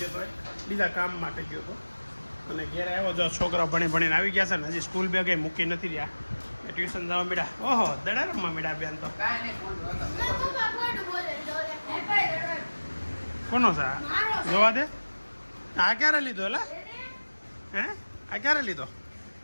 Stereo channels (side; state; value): both; inverted; correlation -1.00